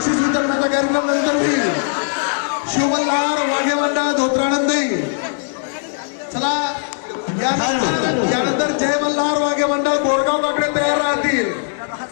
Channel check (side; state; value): right; silent; 60 dB below the other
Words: बक्षीस वितरणाचा कार्यक्रम मंडळी शिवमल्हार वाघे मंडळ धोत्रानंदी. चला यानंतर जय मल्हार वाघे मंडळ गोरगाव बाकडे तयार राहतील.